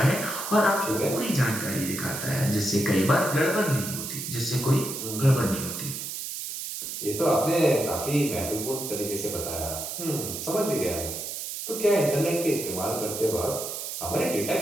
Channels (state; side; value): noise; right; hiss, 6 dB below the sound